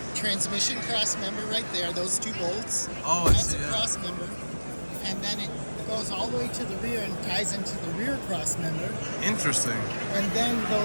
transmission cross member right there, those two bolts. Oh, that's a cross member. And then it goes all the way to the rear and ties into the rear cross member. Interesting. And then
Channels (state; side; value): inverted; both; correlation -1.00